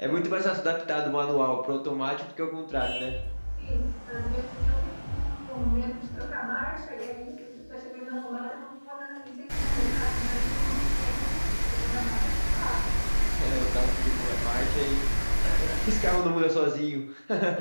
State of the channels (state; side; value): inverted; both; correlation -1.00